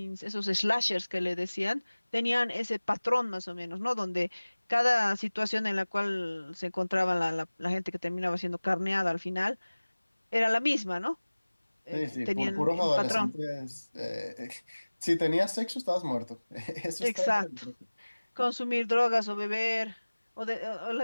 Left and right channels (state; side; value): inverted; both; correlation -1.00